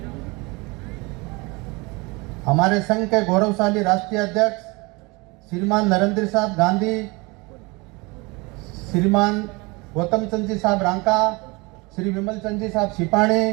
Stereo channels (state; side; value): quieter; left; 25.9 dB